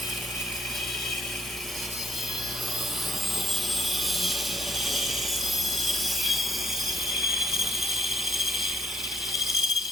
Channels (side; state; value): both; normal; correlation 0.69